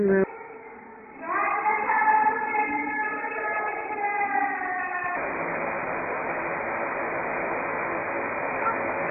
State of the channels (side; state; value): both; identical; correlation 1.00